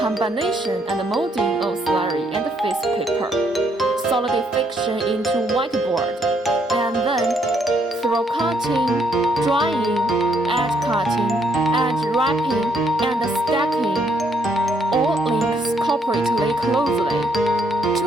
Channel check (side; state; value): both; normal; correlation 0.71